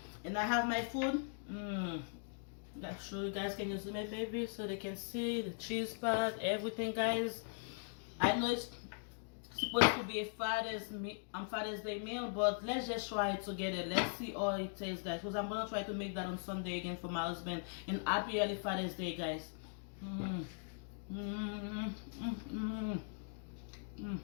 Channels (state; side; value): silent; right; digital silence